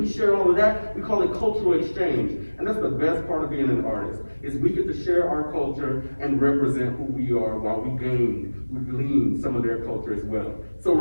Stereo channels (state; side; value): inverted; both; correlation -1.00